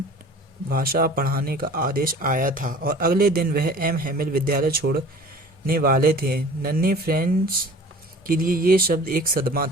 भाषा पढ़ाने का आदेश आया था और अगले दिन वह एम हेमिल विद्यालय छोड़ने वाले थे। नन्हे फ्रेंच के लिए ये शब्द एक सदमा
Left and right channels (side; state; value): both; normal; correlation 0.44